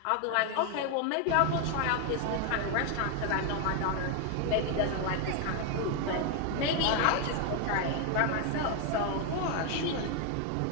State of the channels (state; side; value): different; both; correlation 0.01